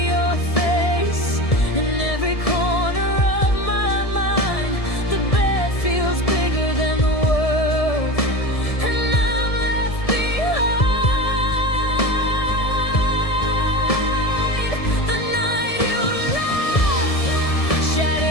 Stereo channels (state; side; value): late; right; 1.7 ms